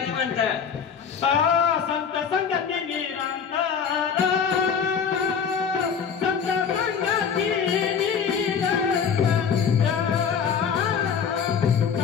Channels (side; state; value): right; quieter; 6.9 dB